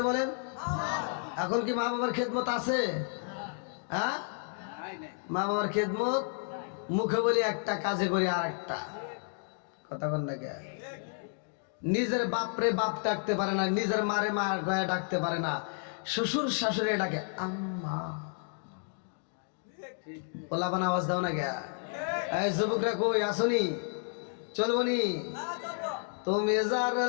বলেন। এখন কি মা বাবার খেদমত আছে? হ্যাঁ, মা বাবার খেদমত মুখে বলি একটা, কাজে করি আর একটা। কথা বল না কে? নিজের বাপরে বাপ ডাকতে পারে না, নিজের মারে মা গয়া ডাকতে পারে না, শ্বশুর শাশুড়ি ডাকে আম্মা। ওলাবান আওয়াজ দাও না কে? এই যুবকরা কই আসনি? চলবনি? তুমি যার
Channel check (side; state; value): right; silent; 57 dB below the other